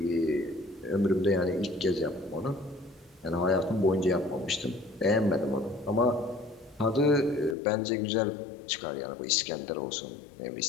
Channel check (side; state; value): right; drops out; at 7.6 s